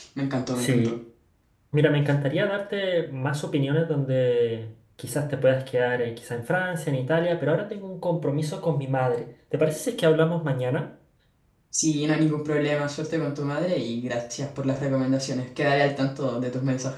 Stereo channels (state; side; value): identical; both; correlation 1.00